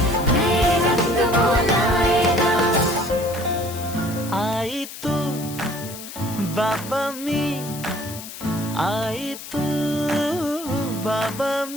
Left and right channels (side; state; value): left; noise; hiss, 12 dB below the sound